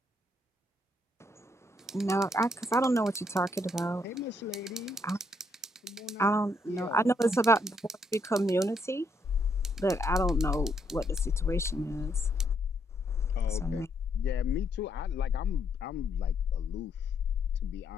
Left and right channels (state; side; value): normal; both; correlation 0.73